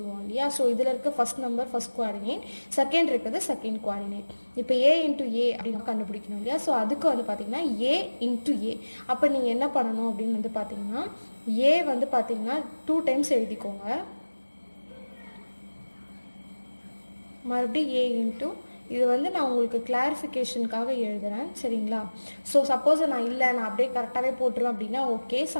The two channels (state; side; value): inverted; both; correlation -1.00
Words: இல்லையா. ஸோ இதில் இருக்க first number first coordinate, second இருக்கிறது செகண்ட் குவாடினேட். இப்போ ஏ இன்ட்டு ஏ அப்படின்னு கண்டுபிடிக்கணும் இல்லையா. ஸோ அதுக்கு வந்து பார்த்திங்கன்னா ஏ இன்ட்டு ஏ. அப்போ நீங்கள் என்ன பண்ணணும் அப்படின்னு வந்து பார்த்திங்கன்னா ஏ வந்து பார்த்திங்கன்னா 2 டைம்ஸ் எழுதிக்கோங்க. மறுபடியும் ஏ இன்ட்டு, இது வந்து நான் உங்களுக்கு கிளாரிஃபிகேஷனுக்காக எழுதுகிறேன். சரிங்களா? ஸோ சப்போஸ் நான் அப்படியே கரெக்டாகவே போட்டுருவேன் அப்படின்னா ஓகே,